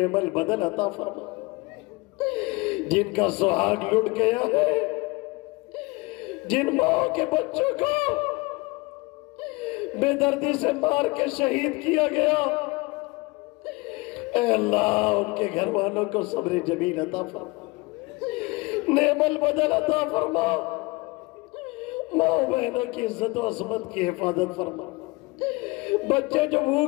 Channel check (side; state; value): right; quieter; 24.8 dB